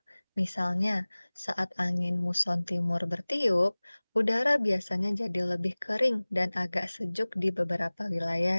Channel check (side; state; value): both; inverted; correlation -1.00